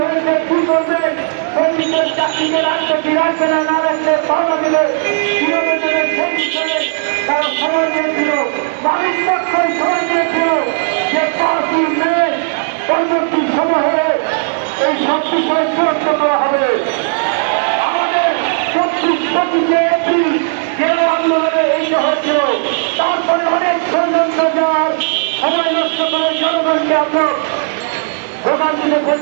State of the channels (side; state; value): left; silent; digital silence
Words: কি করবে, শ্রমিকের চাকরিকে রাখবে কি রাখবে না, না রাখলে পাওয়া দিলে কিভাবে দেবে, তারা সময় নিয়েছিল। মালিক পক্ষই সময় নিয়েছিল যে 5ই মে পরবর্তী সময় হলে এই সব বিষয় চূড়ান্ত করা হবে। আমাদের 25 এপ্রিল যে আন্দোলনে এইটা হয়েছিল, তারপরে অনেক ষড়যন্ত্র যাওয়ার সময় নষ্ট করে জনগণকে আমরা ভোগান্তিতে